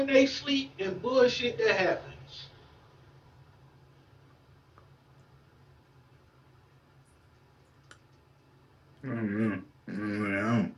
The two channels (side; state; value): both; identical; correlation 1.00